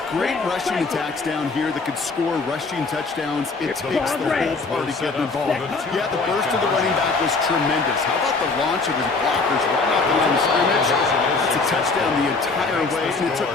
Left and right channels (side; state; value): right; quieter; 4.0 dB